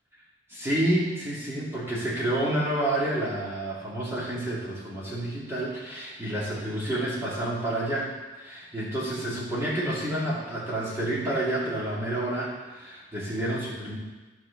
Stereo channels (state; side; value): normal; both; correlation 0.50